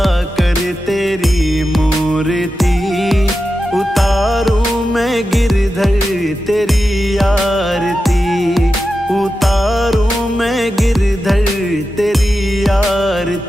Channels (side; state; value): both; normal; correlation 0.91